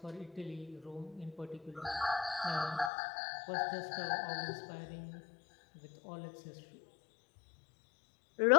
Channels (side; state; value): right; drops out; at 2.9 s